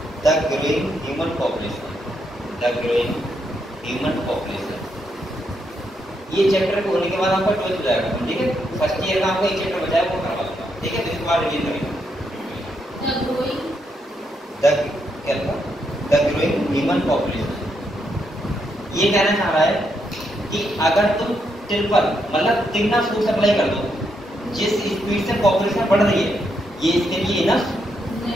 the growing human population। ये चैप्टर को होने के बाद आपका 12th हो जाएगा, ठीक है? फर्स्ट ईयर का आपका एक चैप्टर बचा है, वो करवा दूंगा, ठीक है? इसके बाद रिवीजन करेंगे। द ग्रोइंग ह्यूमन पॉपुलेशन, ये कहना चाह रहा है कि अगर तुम ट्रिपल मतलब तिगना फूड सप्लाई कर दो, जिस स्पीड से पॉपुलेशन बढ़ रही है, ये इसके लिए इनफ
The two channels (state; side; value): normal; both; correlation 0.79